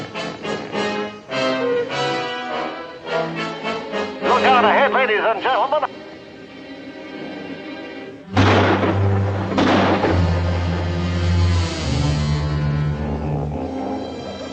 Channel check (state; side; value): identical; both; correlation 1.00